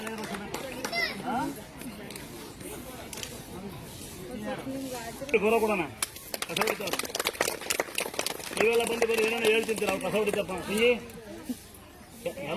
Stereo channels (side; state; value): both; identical; correlation 1.00